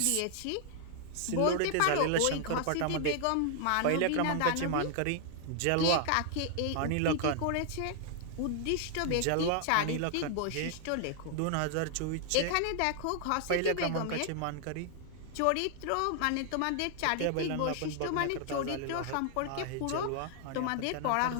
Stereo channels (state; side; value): different; both; correlation 0.00